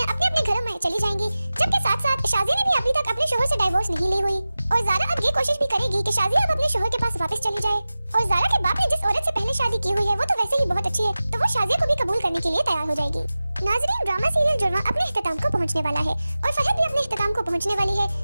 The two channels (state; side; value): inverted; both; correlation -0.96